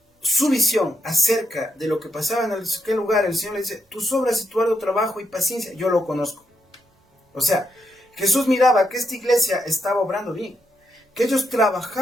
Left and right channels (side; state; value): both; normal; correlation 0.81